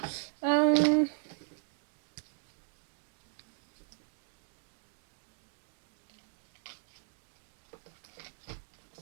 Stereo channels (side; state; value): left; silent; 53 dB below the other